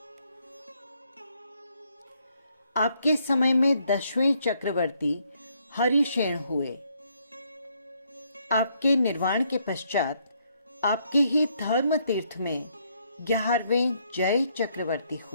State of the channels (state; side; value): inverted; both; correlation -0.72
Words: आपके समय में 10वें चक्रवर्ती हरिशेन हुए। आपके निर्वाण के पश्चात आपके ही धर्म तीर्थ में 11वें जय चक्रवर्ती